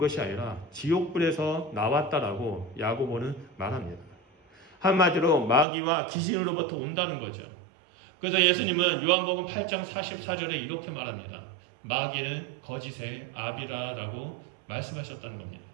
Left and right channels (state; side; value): drops out; left; at 5.7 s